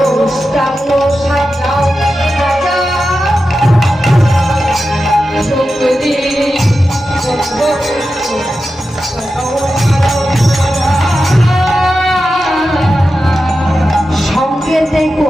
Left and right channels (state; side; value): normal; both; correlation 0.91